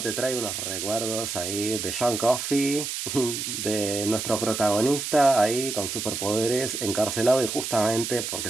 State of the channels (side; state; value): right; noise; hiss, 4 dB below the sound